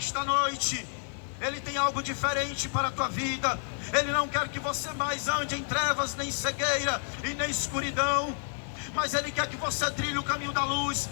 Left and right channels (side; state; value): right; silent; 57 dB below the other